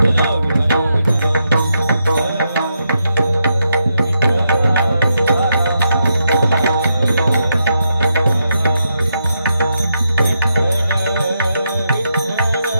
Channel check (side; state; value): both; inverted; correlation -0.82